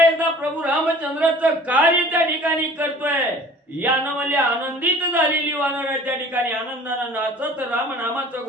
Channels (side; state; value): both; normal; correlation 0.47